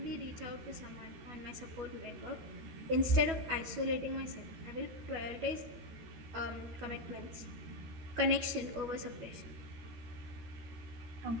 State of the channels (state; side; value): late; left; 12 ms